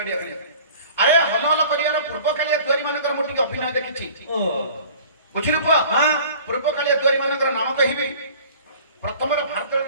ଖାଲି ଆରେ ହଲ ହଲ କରିବାର ପୂର୍ବ କାଳିଆ ଦ୍ୱାରୀ ମାନଙ୍କର ମୁଁ ଟିକେ ଅଭିନୟ ଦେଖିଛି ଓ ବୁଝିଲୁ ପୁଅ ହଁ ପୂର୍ବ କାଳିଆ ଦ୍ୱାରୀ ମାନଙ୍କର ନାମ କହିବି ପ୍ରଥମରେ ଭାରତର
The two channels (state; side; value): inverted; both; correlation -0.46